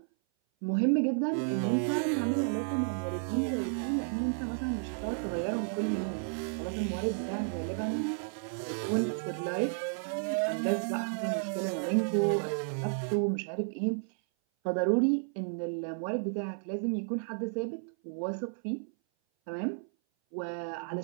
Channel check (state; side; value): silent; left; 56 dB below the other